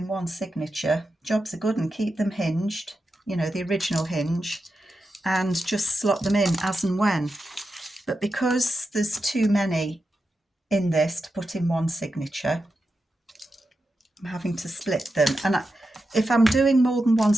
one signature, jobs are good, and keep them hinged, you know, the original hinge, and just slot them in as and when. But because there's too many in this to put in one signature, I'm having to split them. And if I'm doing more than one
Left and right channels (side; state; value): both; normal; correlation 0.89